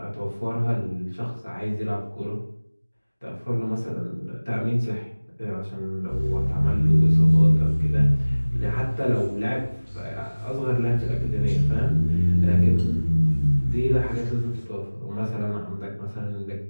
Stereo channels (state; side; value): inverted; both; correlation -1.00